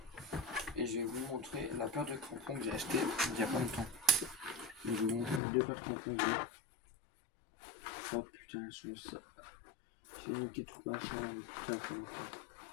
Et je vais vous montrer la paire de crampons que j'ai acheté il n'y a pas longtemps. Et je vais vous montrer les deux paires de crampons que j'ai. Oh putain, elles sont ça. J'ai niqué tout machin, putain, comme ça.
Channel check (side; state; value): right; drops out; at 5.4 s